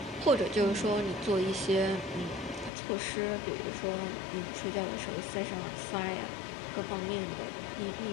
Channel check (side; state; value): right; drops out; at 2.7 s